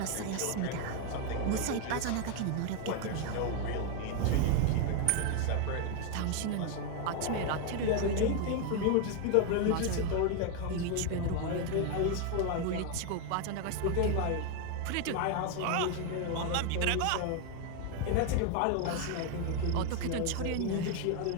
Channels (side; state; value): both; different; correlation 0.01